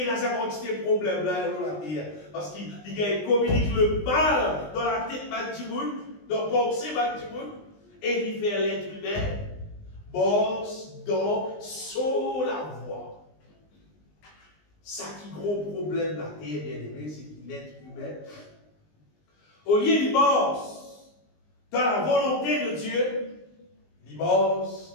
dans sa quantité de problèmes là dans la terre. Parce qu'il communique le mal dans la tête de monde, dans la pensée de monde, et il fait l'être humain. Bosse dans sur la voie. Ça qui gros problème la terre, bien aimé, c'est que l'être humain, au lieu de bosse dans la volonté de Dieu, il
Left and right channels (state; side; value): late; right; 20 ms